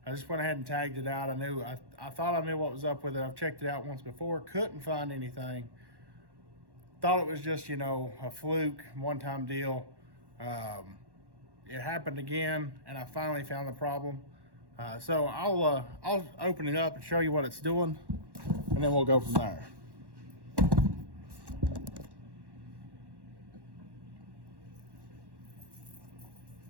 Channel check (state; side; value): late; left; 1.1 ms